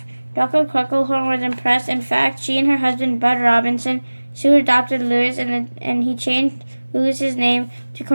Dr. Crunklehorn was impressed. In fact, she and her husband, Bud Robinson, soon adopted Lewis, and he changed Lewis's name to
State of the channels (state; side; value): inverted; both; correlation -1.00